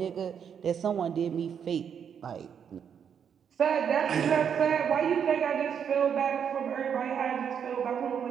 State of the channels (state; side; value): quieter; left; 7.8 dB